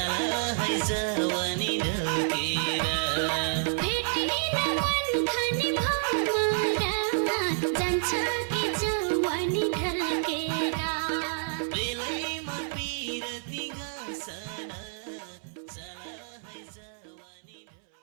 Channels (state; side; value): silent; left; 59 dB below the other